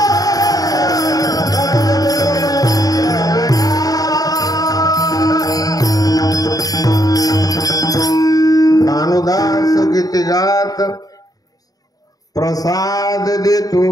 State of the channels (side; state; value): right; late; 0.18 ms